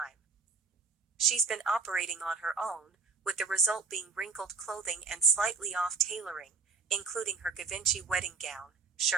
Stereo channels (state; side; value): quieter; left; 4.8 dB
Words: She's been operating on her own, with the result being wrinkled clothing and slightly off tailoring, including her Givenchy wedding gown,